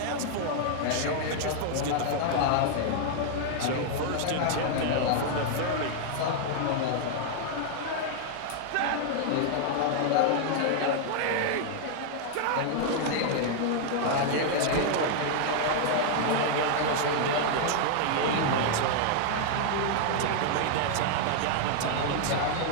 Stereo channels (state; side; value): different; both; correlation 0.00